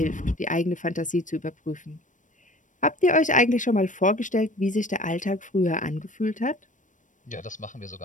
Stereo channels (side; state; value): right; late; 0.37 ms